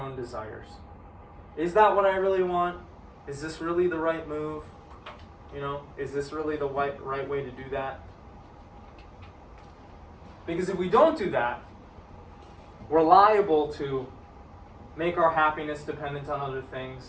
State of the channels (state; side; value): identical; both; correlation 1.00